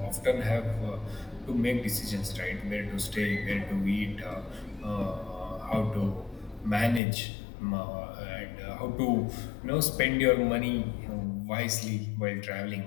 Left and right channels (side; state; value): right; drops out; at 7.0 s